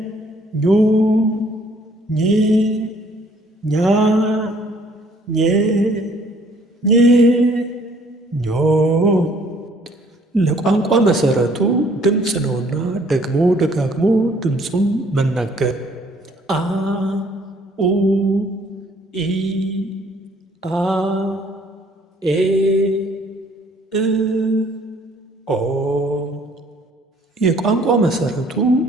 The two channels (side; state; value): both; normal; correlation 0.60